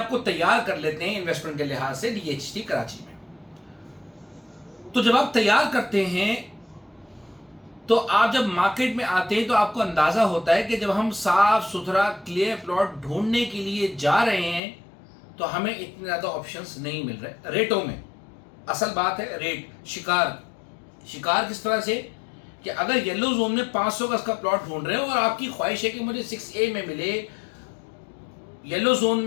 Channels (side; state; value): right; drops out; at 14.6 s